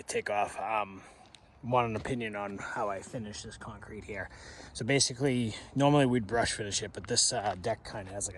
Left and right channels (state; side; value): identical; both; correlation 1.00